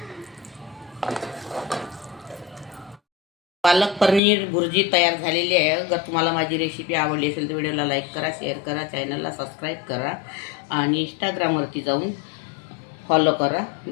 पालक पनीर भुर्जी तयार झालेली आहे। अगर तुम्हाला माझी रेसिपी आवडली असेल तर व्हिडिओला लाईक करा, शेअर करा, चॅनलला सबस्क्राईब करा आणि इंस्टाग्रामवरती जाऊन फॉलो करा।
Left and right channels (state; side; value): drops out; right; at 4.2 s